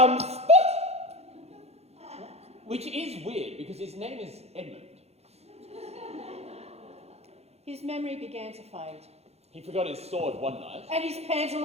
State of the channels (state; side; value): late; left; 0.31 ms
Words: spot!" Which is weird, because his name is Edmund. His memory began to fade. He forgot his sword one night. And his